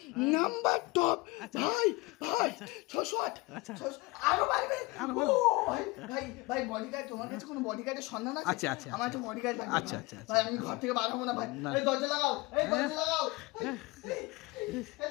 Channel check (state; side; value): quieter; right; 23.1 dB